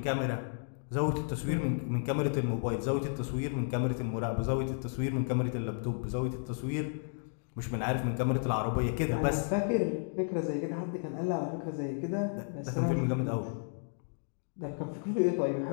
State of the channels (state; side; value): silent; right; digital silence